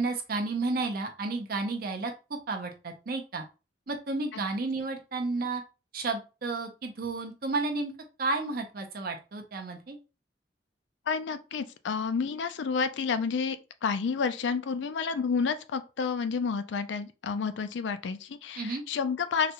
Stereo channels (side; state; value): both; normal; correlation 0.18